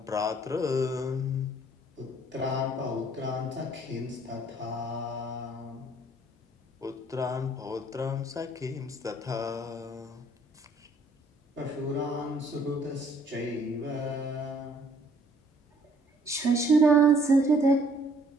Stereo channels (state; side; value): normal; both; correlation 0.61